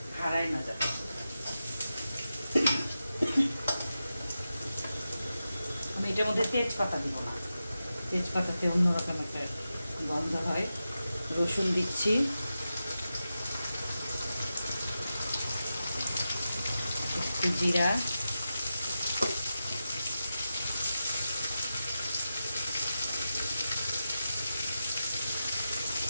হারায় না যাবে। আমি এটার মধ্যে তেজপাতা দিব না, তেজপাতাতে অন্যরকম একটা গন্ধ হয়। রসুন দিচ্ছি, একটু জিরা,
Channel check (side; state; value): both; inverted; correlation -0.91